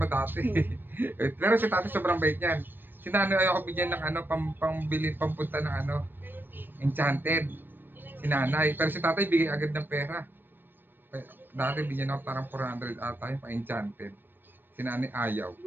dati. Pero si tatay sobrang bait niyan. Si nanay ayoko bigyan ng ano, pambili, pampunta ng ano, enchanted. Si nanay. Pero si tatay bigay agad ng pera. Dati bigyan ako parang 400 ata yung pa-enchanted. Si nanay ayaw.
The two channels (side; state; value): left; late; 0.095 ms